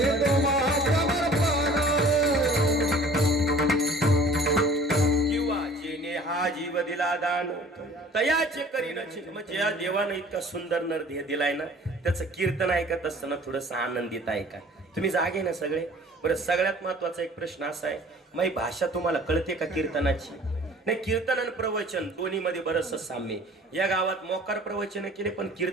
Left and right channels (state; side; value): normal; both; correlation 0.49